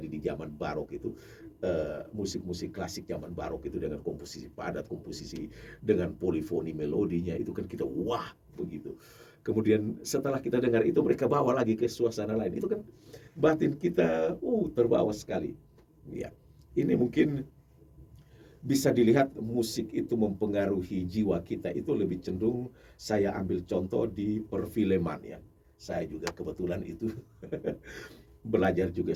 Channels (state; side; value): identical; both; correlation 1.00